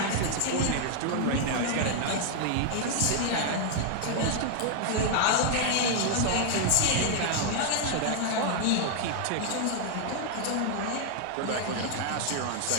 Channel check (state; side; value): different; both; correlation 0.00